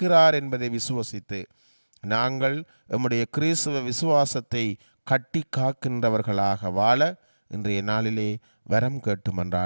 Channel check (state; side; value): inverted; both; correlation -1.00